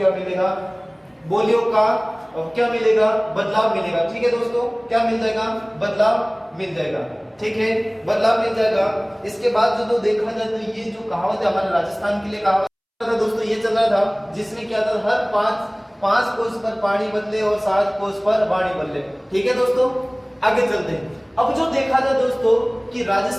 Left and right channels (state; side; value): identical; both; correlation 1.00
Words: मिलेगा? बोलियों का क्या मिलेगा? बदलाव मिलेगा। ठीक है दोस्तों, क्या मिल जाएगा? बदलाव मिल जाएगा। ठीक है, बदलाव मिल जाएगा। इसके बाद जो देखा जाए तो ये जो कहावत है हमारे राजस्थान के लिए कहावत था दोस्तों, ये चल रहा था, जिसमें क्या था? हर 5 कोस पर पानी बदले और 7 कोस पर वाणी बदले। ठीक है दोस्तों, आगे चलते हैं। अब जो देखा जाए दोस्तों कि